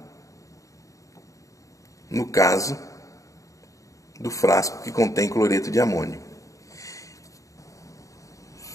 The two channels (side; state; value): right; late; 0.16 ms